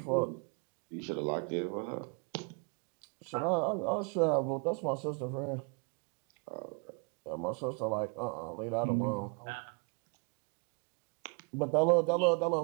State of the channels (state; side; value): quieter; left; 36.2 dB